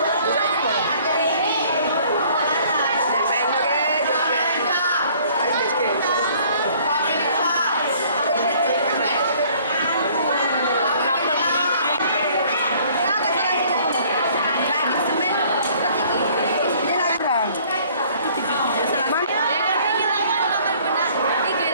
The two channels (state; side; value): inverted; both; correlation -0.57